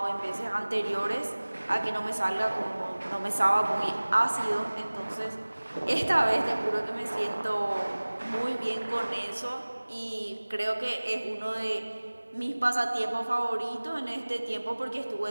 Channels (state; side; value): inverted; both; correlation -1.00